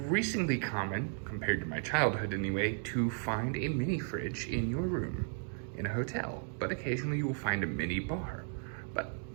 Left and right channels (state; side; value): silent; left; 55 dB below the other